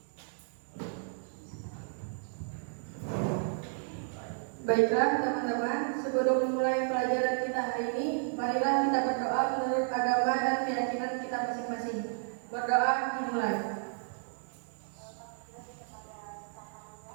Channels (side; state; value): left; silent; digital silence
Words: Baiklah teman-teman, sebelum memulai pelajaran kita hari ini, marilah kita berdoa menurut agama dan keyakinan kita masing-masing. Berdoa dimulai.